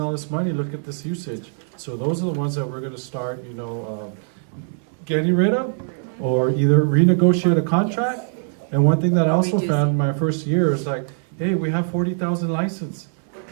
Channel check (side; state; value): left; silent; 64 dB below the other